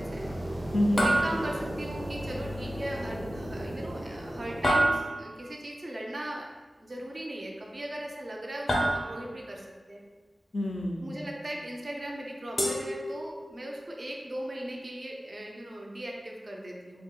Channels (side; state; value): both; normal; correlation 0.94